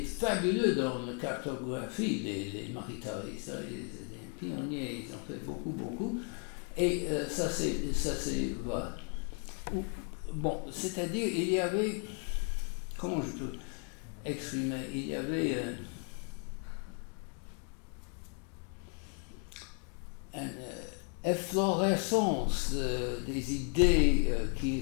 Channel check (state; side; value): quieter; right; 39.5 dB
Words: fabuleux dans la cartographie des maquetaristes. Ils étaient des pionniers, ils ont fait beaucoup. Et ça c'est voilà. Bon, c'est-à-dire, il y avait, comment je peux exprimer, il y avait une efflorescence des idées